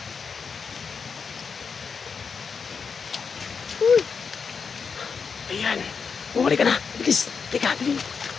Ayan. Bumalik ka na. Bilis. Tika, bilis.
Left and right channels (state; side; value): quieter; right; 5.7 dB